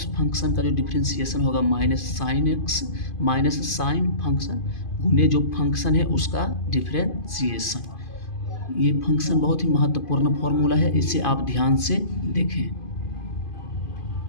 फंक्शन का जो डिफ्रेंसिएशन होगा माइनस साइन फंक्शन गुने जो फंक्शन है उसका डिफ्रेंसिएशन। ये फंक्शन बहुत ही महत्वपूर्ण फॉर्मूला है, इसे आप ध्यान से देखें।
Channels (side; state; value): right; late; 2.5 ms